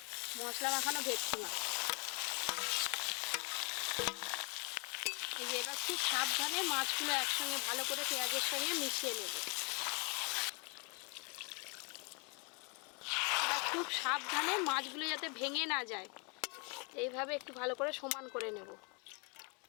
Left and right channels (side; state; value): right; quieter; 33.9 dB